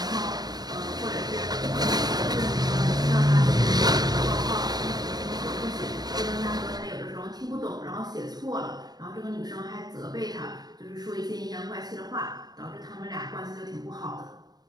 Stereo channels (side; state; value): left; late; 0.19 ms